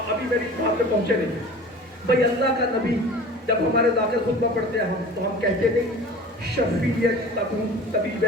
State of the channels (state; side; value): normal; both; correlation 0.40